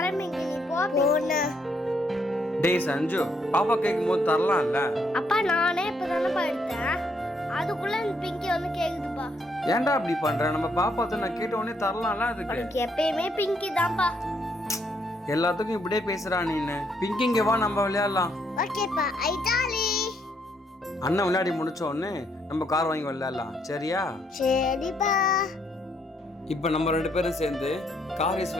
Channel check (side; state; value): both; normal; correlation 0.73